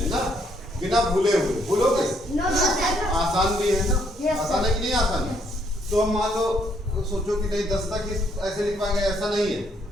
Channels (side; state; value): both; normal; correlation 0.70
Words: ना, बिना भूले हुए। भूलोगे आसान भी है ना, आसान है कि नहीं आसान है। तो हम मान लो सोचो कि नहीं 10 तक ऐसे लिख पाएंगे, ऐसा नहीं है।